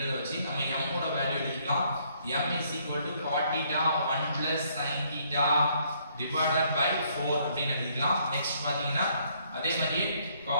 வச்சு நம்ம m ஓட வேல்யூ எழுதிக்கலாம். m is equal to cot theta 1 plus sin theta divided by 4 அப்படினு எழுதிக்கலாம். நெக்ஸ்ட் பாத்தீங்கன்னா அதே மாதிரி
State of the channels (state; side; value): inverted; both; correlation -0.68